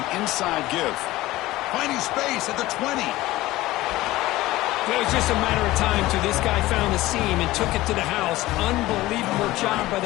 an inside give. Finding space at the 20. It was just a matter of time till this guy found the seam and took it to the house. Unbelievable job by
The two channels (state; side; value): quieter; right; 17.6 dB